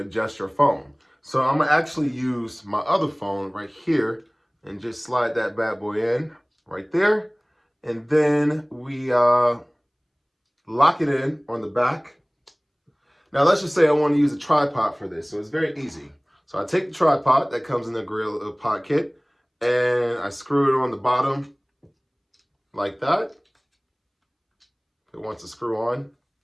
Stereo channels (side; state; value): both; identical; correlation 1.00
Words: your phone. So I'm gonna actually use my other phone right here and just slide that bad boy in right there. And then we lock it in on the back. Now let's just say I want to use a tripod for this. So it's very easy. So I take the tripod that comes in the GorillaPod kit and I screw it on the bottom like that. It wants to screw on.